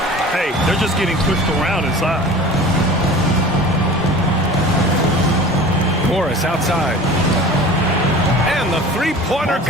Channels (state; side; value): normal; both; correlation 0.41